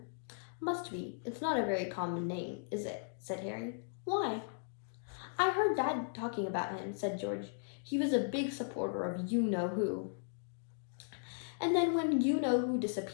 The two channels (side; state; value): right; silent; digital silence